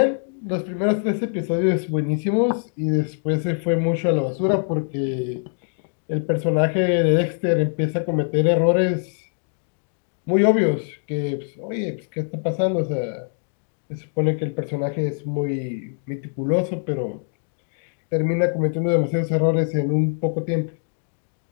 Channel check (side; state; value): right; silent; digital silence